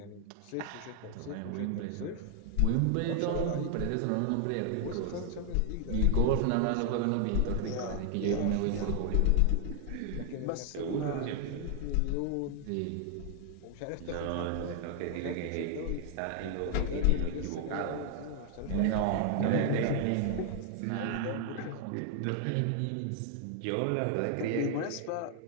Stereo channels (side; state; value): both; different; correlation 0.00